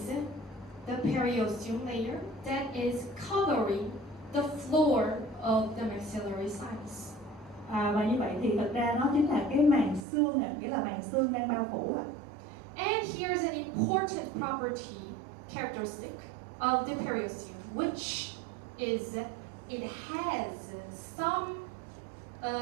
the periosteum layer that is covering the floor of the maxillary sinus. Và như vậy thì thật ra nó chính là cái màng xương, nghĩa là màng xương đang bao phủ. And here's an important property characteristic of the periosteum, which is it has some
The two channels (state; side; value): drops out; left; at 10.1 s